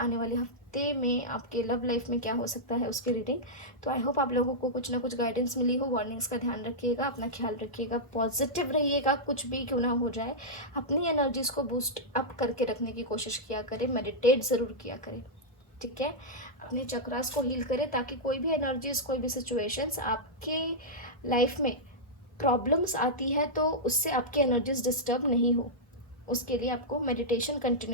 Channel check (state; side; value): normal; both; correlation -0.08